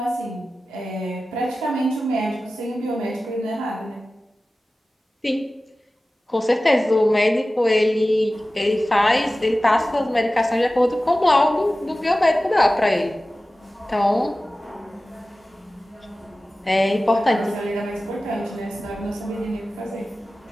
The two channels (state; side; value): normal; both; correlation 0.96